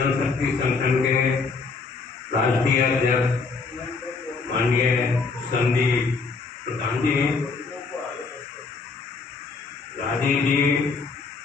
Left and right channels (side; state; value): right; quieter; 4.5 dB